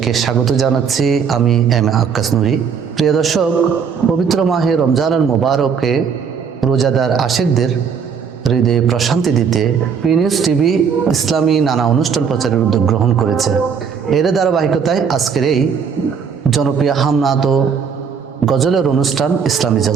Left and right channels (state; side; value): quieter; left; 6.6 dB